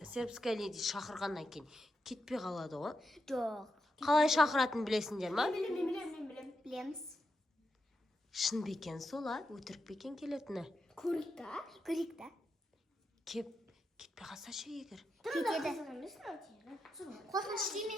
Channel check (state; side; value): normal; both; correlation 0.85